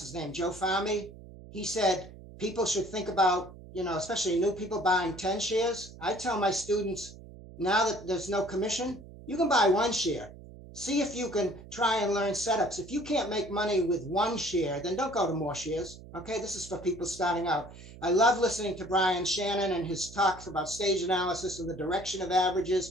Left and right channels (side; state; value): right; noise; hum, 17 dB below the sound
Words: name, Joe Fahmy, he said people should think about, you know, especially new people buying 10 shares. I tell my students now that there's no commission, you can buy one share. See if you can try and learn setups. If you can't make money with one share, then don't go to more shares. Okay, this is for people starting out. I love listening to Brian Shannon and his talks about stage analysis and the direction of